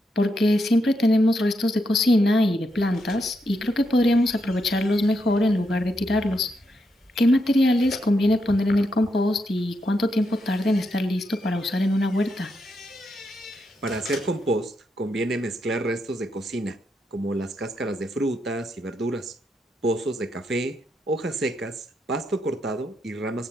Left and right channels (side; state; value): both; normal; correlation 0.82